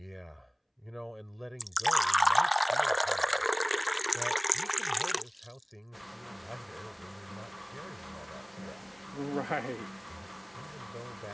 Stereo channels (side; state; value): both; identical; correlation 1.00